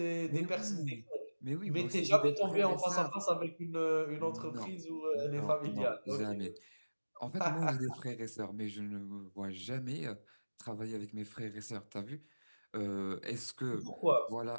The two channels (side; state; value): both; inverted; correlation -1.00